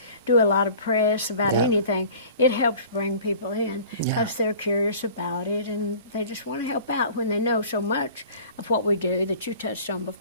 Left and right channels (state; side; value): inverted; both; correlation -0.45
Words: do a lot of press about anything, it helps bring people in because they're curious about it, and they just want to help out when they know so much of what we do that you touched on